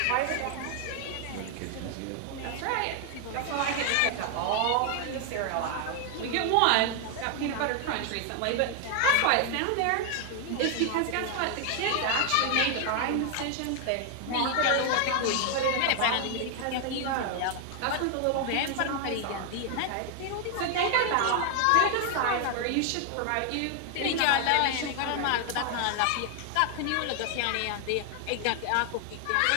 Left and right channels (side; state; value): both; different; correlation 0.00